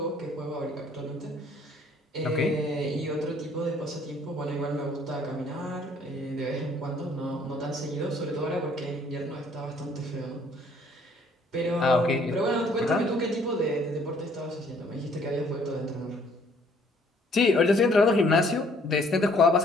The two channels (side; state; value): both; normal; correlation 0.62